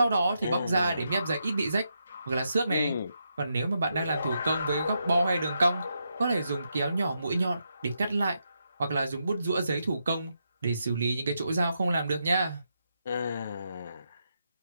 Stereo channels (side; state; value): both; inverted; correlation -0.83